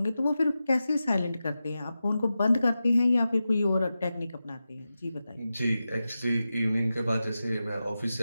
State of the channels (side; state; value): both; inverted; correlation -0.92